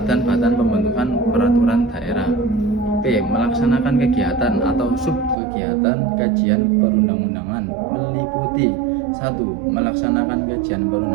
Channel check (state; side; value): drops out; left; at 5.4 s